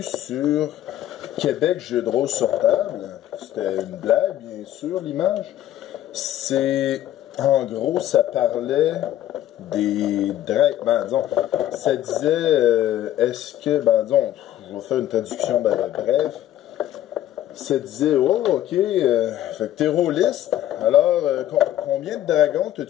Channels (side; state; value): right; quieter; 12.8 dB